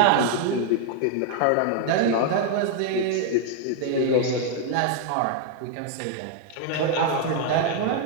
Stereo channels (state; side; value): different; both; correlation 0.00